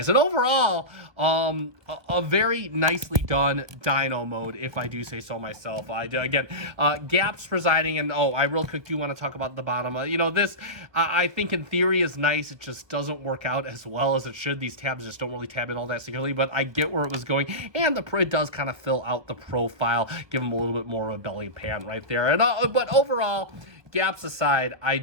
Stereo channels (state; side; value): late; left; 1.1 ms